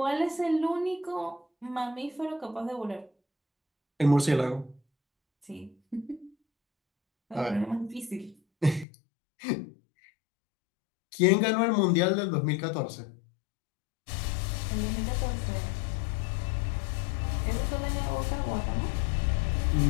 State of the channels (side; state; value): right; drops out; at 8.8 s